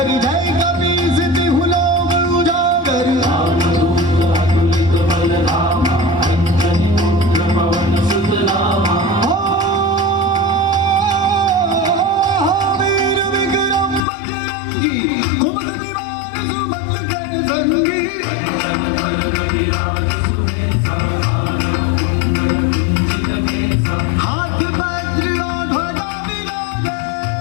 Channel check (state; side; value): drops out; right; at 14.0 s